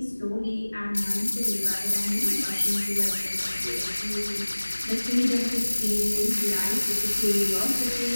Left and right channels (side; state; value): both; inverted; correlation -1.00